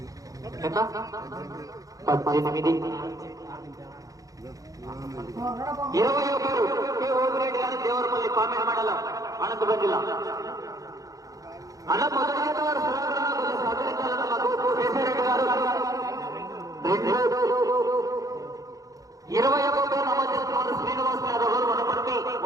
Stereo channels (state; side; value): late; left; 0.17 ms